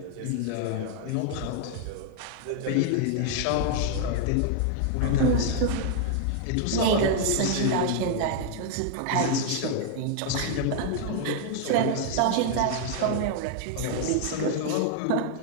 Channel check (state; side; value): different; both; correlation 0.00